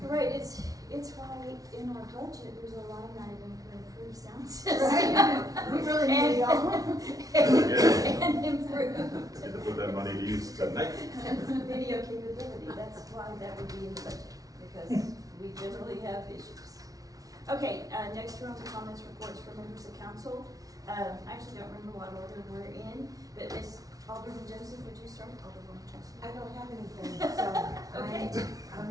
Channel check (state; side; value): late; left; 0.18 ms